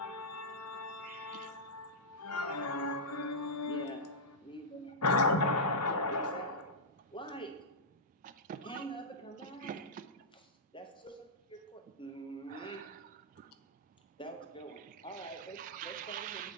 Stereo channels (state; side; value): normal; both; correlation -0.11